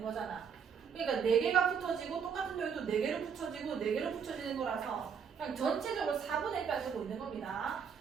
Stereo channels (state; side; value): quieter; left; 7.0 dB